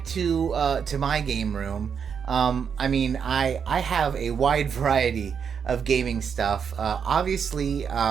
to my game room, I have a wide variety of gaming stuff. Obviously,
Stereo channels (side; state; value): left; quieter; 7.0 dB